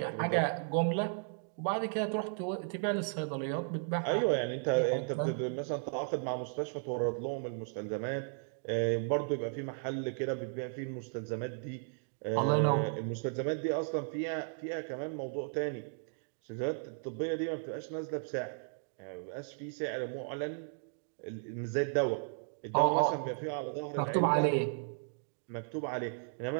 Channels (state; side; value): silent; left; digital silence